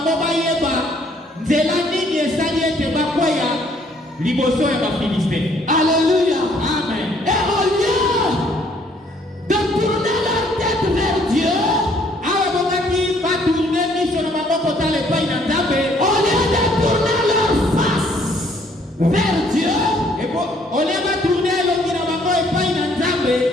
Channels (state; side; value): normal; both; correlation 0.64